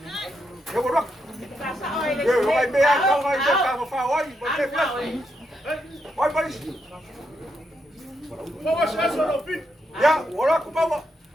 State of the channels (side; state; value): both; normal; correlation 0.81